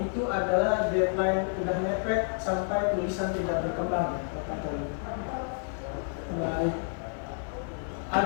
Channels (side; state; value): right; silent; 58 dB below the other